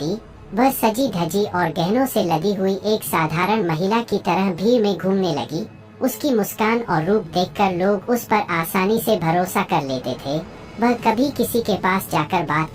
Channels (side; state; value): both; identical; correlation 1.00